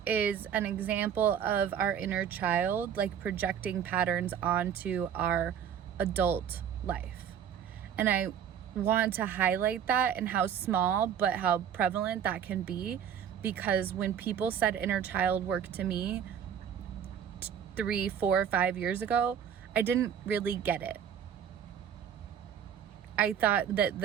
is an example of our inner child, like, projecting patterns onto our adult life. And I want to highlight that and how small but how prevalent that can be, because when people said inner child work to me 3, 4, 5 years ago, I didn't really get it. I thought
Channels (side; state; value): left; quieter; 8.6 dB